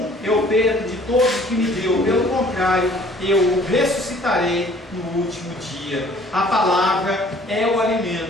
eu perco de todos que me deu, pelo contrário, eu o ressuscitarei no último dia. A palavra é o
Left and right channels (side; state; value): both; normal; correlation 0.54